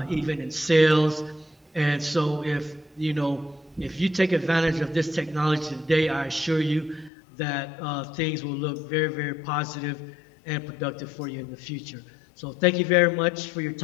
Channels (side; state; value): right; drops out; at 7.1 s